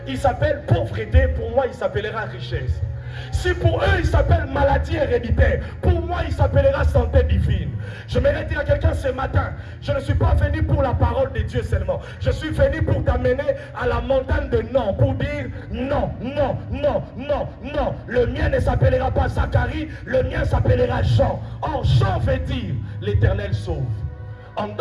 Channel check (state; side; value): identical; both; correlation 1.00